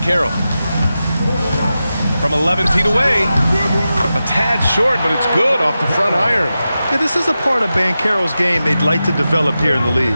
From 11 feet away. A tad short, but it's good off the front iron. Yeah, this is a part of Banchero's game they'd like to develop here in the league.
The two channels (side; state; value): both; inverted; correlation -0.92